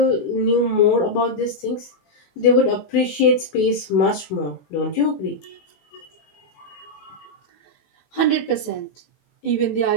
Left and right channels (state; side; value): late; right; 21 ms